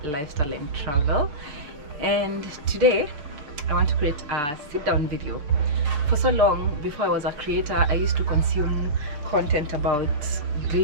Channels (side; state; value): left; late; 6.7 ms